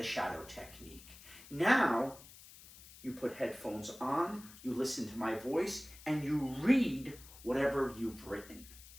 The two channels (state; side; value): noise; left; hiss, 19 dB below the sound